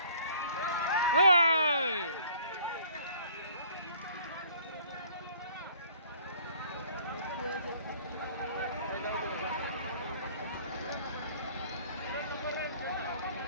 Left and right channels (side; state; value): both; inverted; correlation -0.55